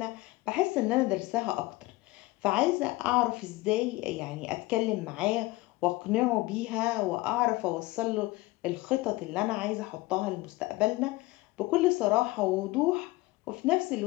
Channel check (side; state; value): right; quieter; 20.6 dB